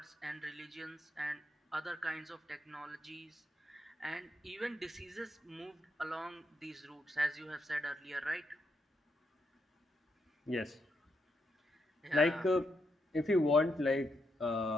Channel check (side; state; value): both; normal; correlation 0.80